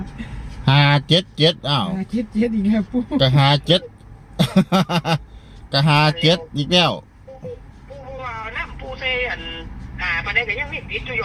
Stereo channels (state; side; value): identical; both; correlation 1.00